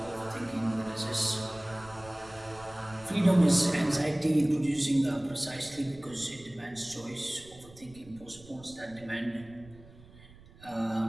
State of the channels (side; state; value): right; noise; rumble, 22 dB below the sound